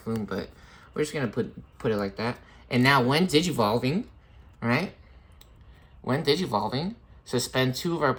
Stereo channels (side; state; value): both; identical; correlation 1.00